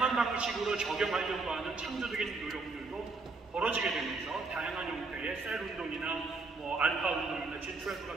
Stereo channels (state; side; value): quieter; left; 3.8 dB